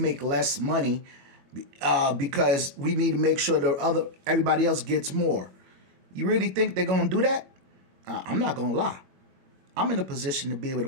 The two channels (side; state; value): left; late; 21 ms